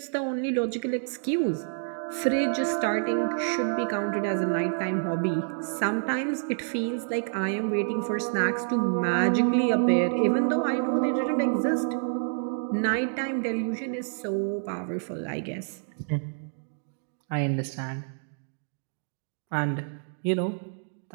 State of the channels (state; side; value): silent; left; digital silence